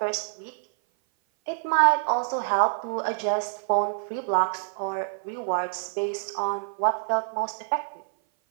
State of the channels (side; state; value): left; silent; 57 dB below the other